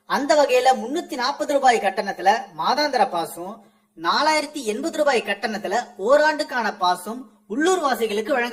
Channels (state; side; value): identical; both; correlation 1.00